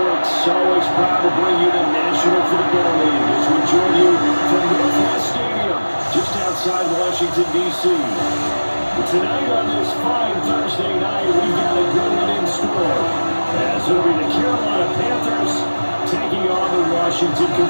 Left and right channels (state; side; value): inverted; both; correlation -1.00